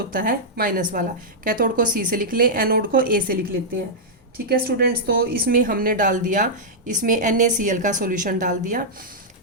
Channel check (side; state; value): both; normal; correlation -0.09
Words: है माइनस वाला। कैथोड को C से लिख लें, एनोड को A से लिख लेते हैं, ठीक है स्टूडेंट्स। तो इसमें हमने डाल दिया, इसमें NaCl का सॉल्यूशन डाल दिया।